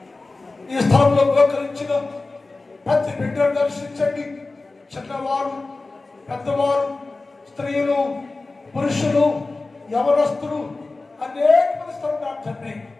ఈ స్థలంలో ఉపకరించిన ప్రతి బిడ్డను దర్శించండి. చిన్నవారు, పెద్దవారు, స్త్రీలు, పురుషులు, యవనస్తులు, అనేక మంది స్థలం తండ్రి.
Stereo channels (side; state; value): right; quieter; 3.4 dB